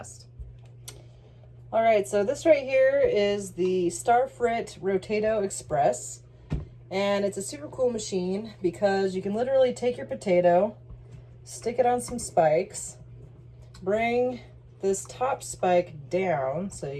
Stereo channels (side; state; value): both; identical; correlation 1.00